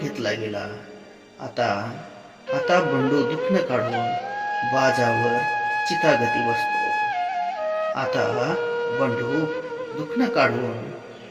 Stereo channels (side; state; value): both; identical; correlation 1.00